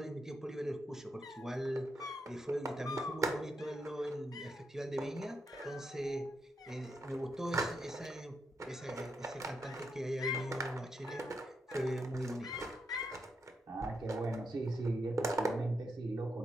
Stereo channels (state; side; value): normal; both; correlation 0.82